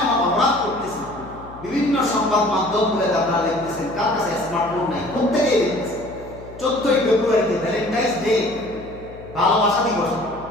এমন অপরাধ করতেছি। বিভিন্ন সংবাদ মাধ্যমগুলোতে আপনারা দেখতেছেন, কার কাছে স্মার্টফোন নাই, প্রত্যেকেই দেখতেছেন। 14ই ফেব্রুয়ারিতে ভ্যালেন্টাইন্স ডে, ভালোবাসা দিবস।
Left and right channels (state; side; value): noise; left; hum, 18 dB below the sound